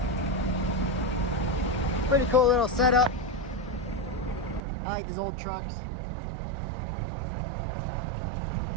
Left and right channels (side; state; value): left; drops out; at 4.6 s